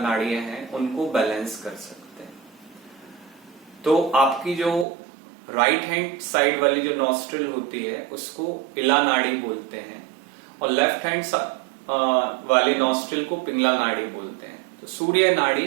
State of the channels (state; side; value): drops out; left; at 4.9 s